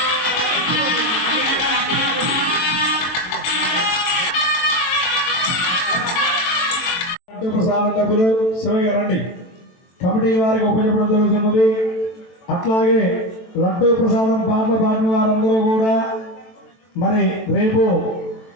ప్రసాదం డబ్బులు శివయ్య రండి. కమిటీ వారికి ఉపయోగపడడం జరుగుతున్నది. అట్లాగే లడ్డు ప్రసాదం పాటలు పాడిన వారందరూ కూడా మరి రేపు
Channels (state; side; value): late; right; 23 ms